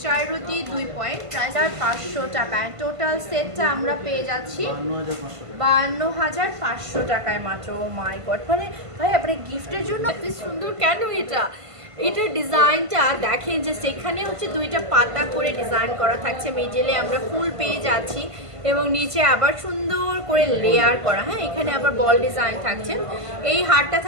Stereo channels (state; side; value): late; left; 1.5 ms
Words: 4 রতি 2 পয়েন্ট, প্রাইস 500 টাকা। টোটাল সেটটা আমরা পেয়ে যাচ্ছি 52,500 টাকায় মাত্র। ও মাই গড, মানে ভাই আপনার গিফটের জন্য এত সুন্দর কেন এটা? এটার ডিজাইনটা দেখেন যে সেখানে হচ্ছে 2টা পাতা করে ডিজাইন করা থাকছে, মিডলে আমরা ফুল পেয়ে যাচ্ছি এবং নিচে আবার সুন্দর করে লেয়ার করা। হ্যাঁ এখানে আবার বল ডিজাইন থাকছে। এই হারটা